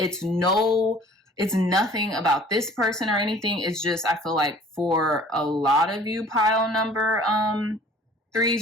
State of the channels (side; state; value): both; normal; correlation 0.50